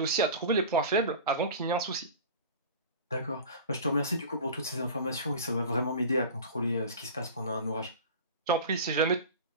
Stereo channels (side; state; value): both; inverted; correlation -0.35